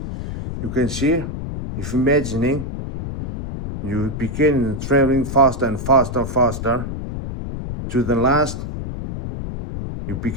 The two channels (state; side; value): noise; left; rumble, 6 dB below the sound